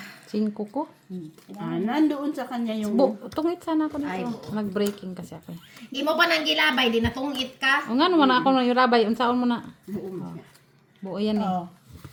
5 ko. Nandoon sa kanya yung... Tungit sana ako Ay, dito. Nag-breaking kasi ako. Imo pa nang gilabay, di natungit ka. O nga naman ako na yung rabay. Unsaon mo na? Buo yan eh. Oh.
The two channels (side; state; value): both; identical; correlation 1.00